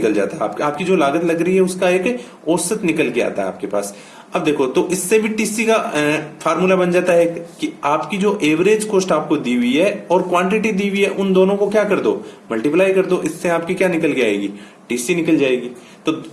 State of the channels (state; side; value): identical; both; correlation 1.00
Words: जाता है। आपकी जो लागत लग रही है उसका एक औसत निकल के आता है आपके पास। अब देखो, तो इससे भी टीसी का फार्मूला बन जाता है कि आपकी जो एवरेज कॉस्ट आपको दी हुई है और क्वांटिटी दी हुई है, उन दोनों को क्या कर दो, मल्टीप्लाई कर दो, इससे आपकी क्या निकल के आएगी, टीसी निकल जाएगी। तो